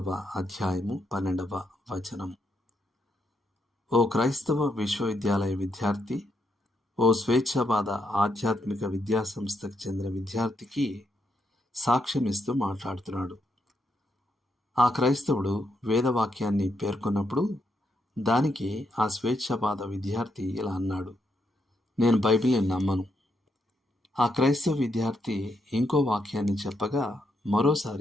అధ్యాయము 12వ వచనం. ఓ క్రైస్తవ విశ్వవిద్యాలయ విద్యార్థి, ఓ స్వేచ్ఛావాద ఆధ్యాత్మిక విద్యాసంస్థకు చెందిన విద్యార్థికి సాక్ష్యమిస్తూ మాట్లాడుతున్నాడు. ఆ క్రైస్తవుడు వేదవాక్యాన్ని పేర్కొన్నప్పుడు దానికి ఆ స్వేచ్ఛావాద విద్యార్థి ఇలా అన్నాడు: నేను బైబిల్ని నమ్మను. ఆ క్రైస్తవ విద్యార్థి ఇంకో వాక్యాన్ని చెప్పగా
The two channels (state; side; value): normal; both; correlation 0.79